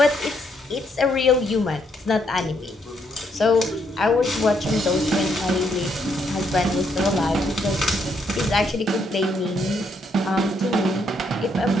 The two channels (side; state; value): both; normal; correlation 0.74